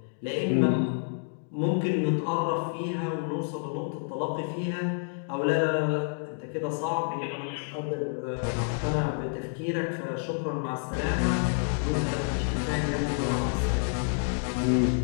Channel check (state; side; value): silent; right; 59 dB below the other